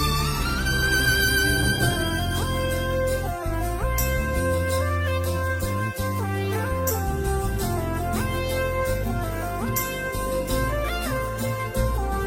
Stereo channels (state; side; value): identical; both; correlation 1.00